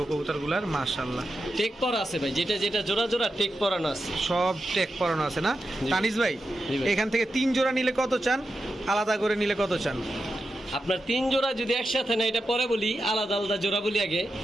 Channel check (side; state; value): both; normal; correlation 0.89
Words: কবুতরগুলার, মাশাআল্লাহ। টেক পরা আছে ভাই, যেটা যেটা জোড়া জোড়া টেক পরানো আছে। সব টেক পরানো আছে না? তানিস ভাই, এখান থেকে 3 জোড়া নিলে কত চান? আলাদা করে নিলে কত চান? আপনার 3 জোড়া যদি একসাথে না, এটা পরে বলি, আলাদা আলাদা জোড়া বলি আগে।